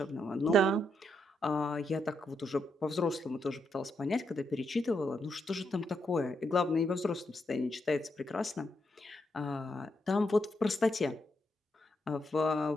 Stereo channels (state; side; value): normal; both; correlation 0.80